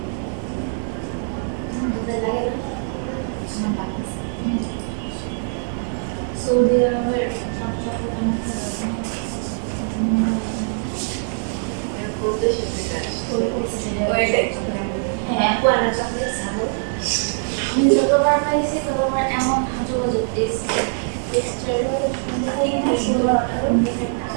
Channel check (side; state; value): left; silent; 57 dB below the other